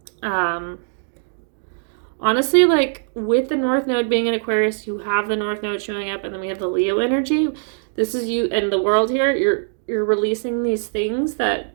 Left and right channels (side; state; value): left; silent; digital silence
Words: Honestly, like with the North Node being in Aquarius, you have the North Node showing up, and then we have the Leo energy. This is you and the world here. You're releasing these things that